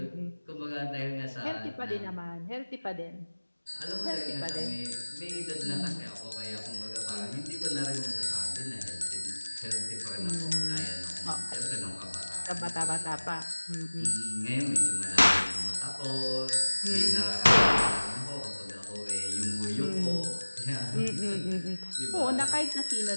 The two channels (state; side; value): inverted; both; correlation -1.00